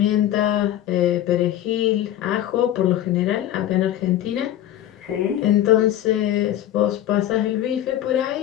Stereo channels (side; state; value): right; quieter; 12.4 dB